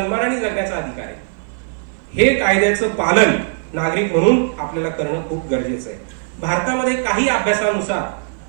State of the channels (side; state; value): left; silent; 58 dB below the other